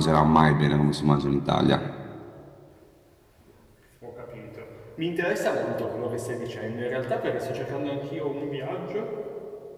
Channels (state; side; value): identical; both; correlation 1.00